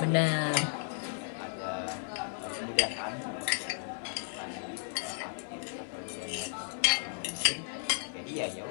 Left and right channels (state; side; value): silent; right; digital silence